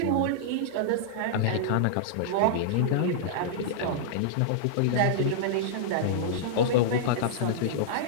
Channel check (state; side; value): different; both; correlation -0.02